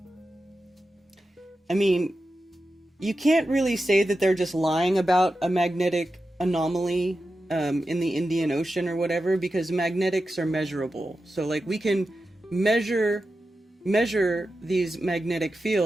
mean, you can't really say that they're just lying about a magnetic anomaly in the Indian Ocean or whatever, because magnetics are measurable. So we can measure these magnetic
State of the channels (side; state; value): both; normal; correlation 0.91